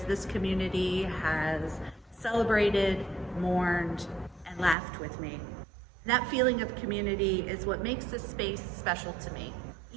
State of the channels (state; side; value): drops out; left; at 4.8 s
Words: this community has celebrated, mourned, and laughed with me. And that feeling of community is what makes this space special to me,